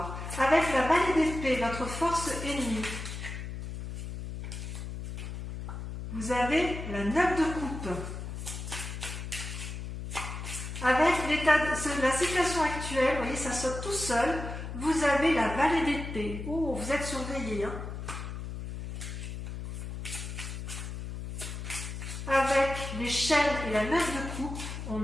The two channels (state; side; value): noise; left; hum, 7 dB below the sound